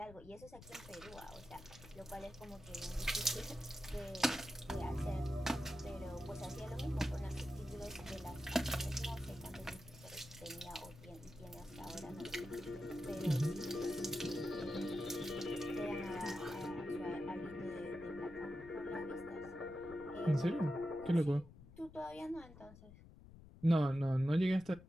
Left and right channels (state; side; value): noise; left; rumble, 18 dB below the sound